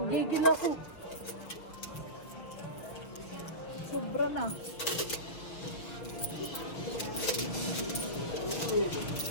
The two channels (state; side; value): late; right; 6.4 ms